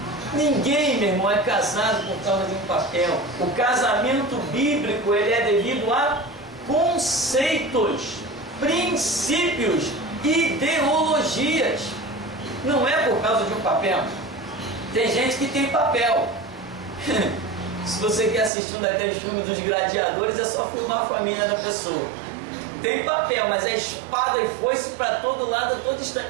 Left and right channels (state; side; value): drops out; left; at 18.5 s